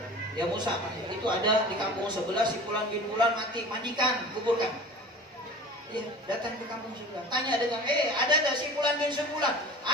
Ya Musa, itu ada di kampung sebelah si Fulan bin Fulan mati, mandikan, kuburkan. Ya, datang ke kampung sebelah, tanya dengan, ada tak si Fulan bin Fulan?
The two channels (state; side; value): normal; both; correlation 0.38